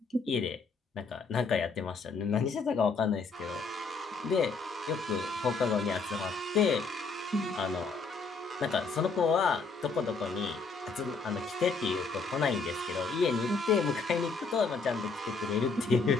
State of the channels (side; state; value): right; quieter; 4.4 dB